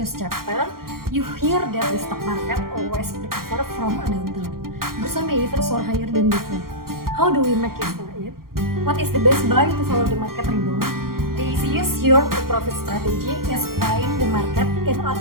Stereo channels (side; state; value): left; late; 0.93 ms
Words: chapter, you hear that the stock market always recover from a downturn. Some may even soar higher than before. How do we make it for it? What is the best buy to follow the market rebound? The easiest yield to profit strategy is buying the market, in